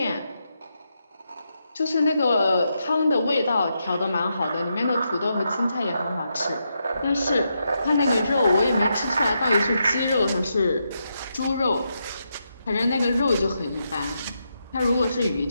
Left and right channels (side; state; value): both; inverted; correlation -0.83